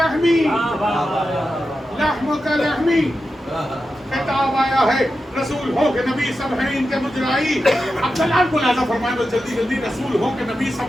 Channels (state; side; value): normal; both; correlation 0.90